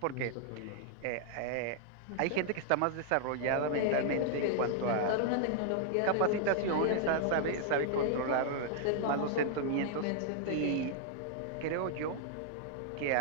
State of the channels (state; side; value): different; both; correlation 0.00